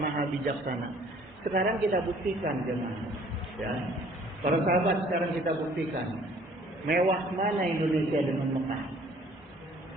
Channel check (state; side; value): normal; both; correlation 0.56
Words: maha bijaksana. Sekarang kita buktikan jemaah. Ya. Para sahabat, sekarang kita buktikan. Mewah mana Indonesia dengan Mekah?